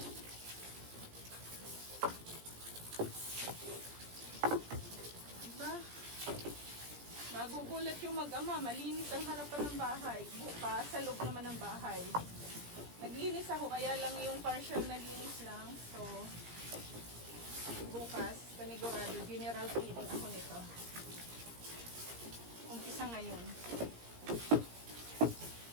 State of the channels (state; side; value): late; left; 17 ms